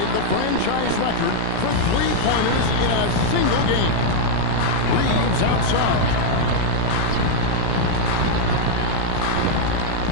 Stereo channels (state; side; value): different; both; correlation -0.01